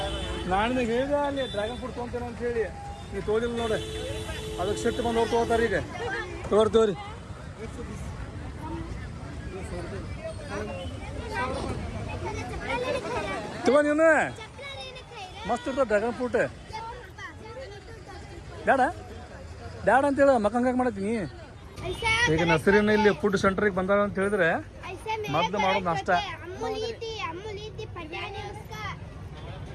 ನಾನು ಹೇಳಿದೆ ಅಲ್ಲಿ ಡ್ರ್ಯಾಗನ್ ಫ್ರೂಟ್ ತೊಗೊಂತೇನೆ ಅಂತ ಹೇಳಿ ನೀವು ತೋದಿಲ್ಲ ನೋಡಿ ಅದಕ್ಕೆ ಸೆಟ್ ಬಂದು ಅವ್ರು ತೊಗೋತಾರೆ ಈಗ ತೋರಿ ತಗೋ ನೀನು ಮಸ್ತ್ ಇರ್ತದೆ ಡ್ರ್ಯಾಗನ್ ಫ್ರೂಟ್ ಬೇಡ ಬೇಡ ಅಂತೇಳಿ ಮಕ್ಕಂಗೆ ಮಾಡತ್ತೀನಿ ಈಗ ನರ್ಸರಿನ ಇಲ್ಲಿ ಫುಡ್ ಸೆಂಟ್ರಿಗೆ ಬಂದಾರ ಅಂತ ಹೇಳಿದ್ರೆ ಮೊದಲು ಮಾಡೋದು ನಾಷ್ಟ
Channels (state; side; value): identical; both; correlation 1.00